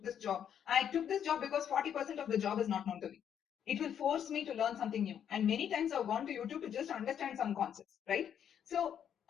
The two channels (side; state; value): right; quieter; 8.9 dB